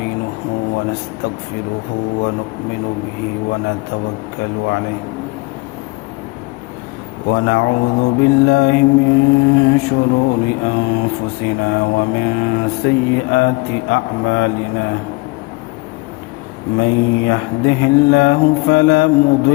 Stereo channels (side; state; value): right; quieter; 26.1 dB